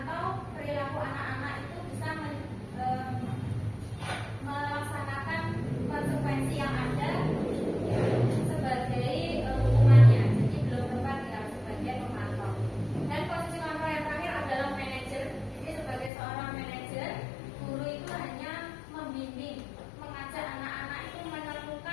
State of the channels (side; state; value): right; drops out; at 16.1 s